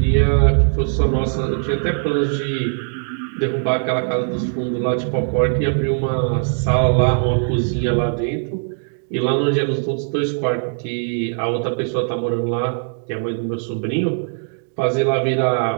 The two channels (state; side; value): silent; left; digital silence